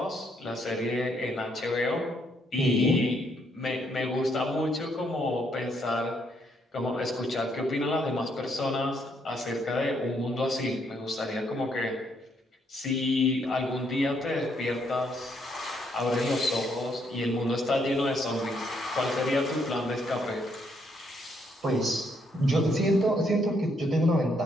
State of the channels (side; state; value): both; normal; correlation 0.72